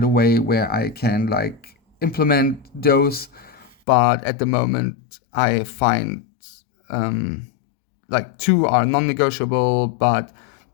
a way where I can like implement those. But at the moment, I find like 2 are non-negotiable, but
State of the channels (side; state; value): right; drops out; at 3.8 s